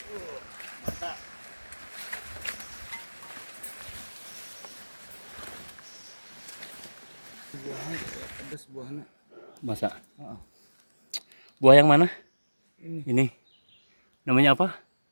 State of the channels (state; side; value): inverted; both; correlation -1.00